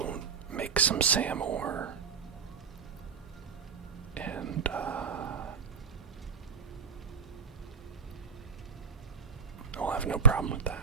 make some Sam ore. And I'll have no problem with that.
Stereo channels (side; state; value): left; quieter; 5.9 dB